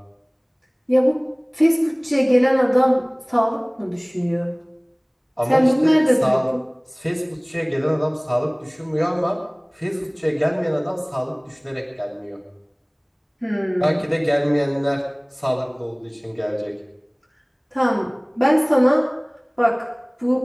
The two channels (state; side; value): identical; both; correlation 1.00